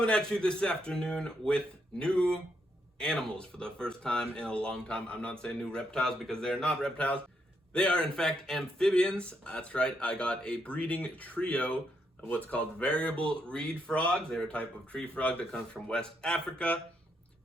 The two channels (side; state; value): both; normal; correlation 0.78